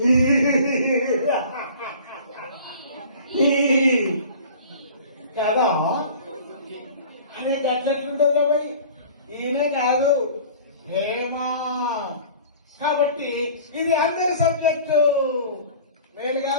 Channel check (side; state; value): both; inverted; correlation -0.44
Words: కదా అనే గట్లెట్లుంటుంది బాబాయ్. ఈయనే కాదు, ఏమా. కాబట్టి ఇది అందరి సబ్జెక్టు. నేను